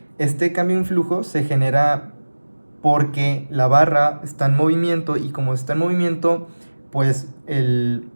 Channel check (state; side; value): inverted; both; correlation -1.00